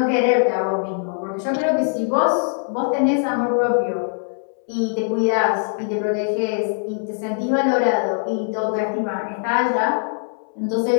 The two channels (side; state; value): right; silent; 65 dB below the other